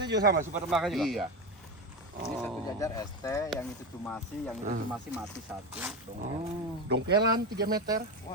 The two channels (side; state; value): both; normal; correlation 0.17